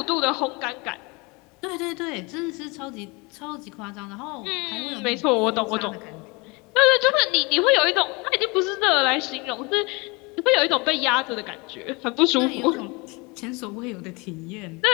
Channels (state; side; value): quieter; right; 27.3 dB